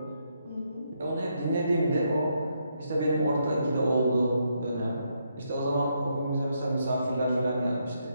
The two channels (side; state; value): both; inverted; correlation -0.78